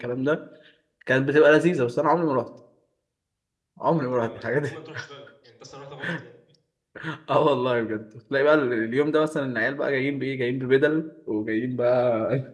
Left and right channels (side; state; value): both; identical; correlation 1.00